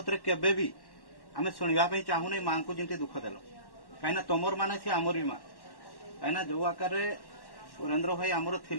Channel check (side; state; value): right; late; 1.1 ms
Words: केबे भी आम शुणा चाहूनी माँ को जमी दुख देल कहीं तुमर माने सी आमर भी माँ कहीं जो आकार सुरेंद्र भाई आमर